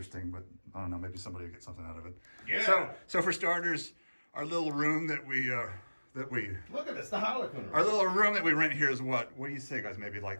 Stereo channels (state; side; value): inverted; both; correlation -1.00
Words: But I don't know, maybe somebody will get something out of it. Yeah. So for starters, our little room that we Look at this, the Harlequin room. our little room that we rent here is what do you say, guys? Maybe